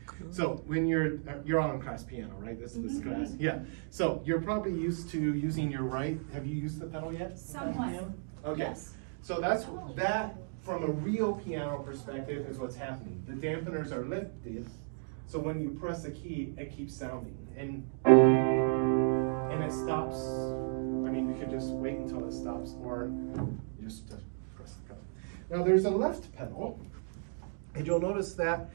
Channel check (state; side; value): silent; left; digital silence